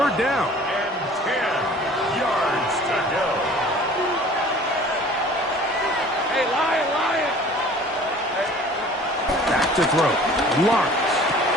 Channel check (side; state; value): both; normal; correlation 0.48